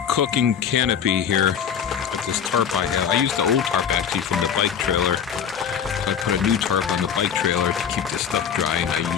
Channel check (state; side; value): quieter; right; 7.9 dB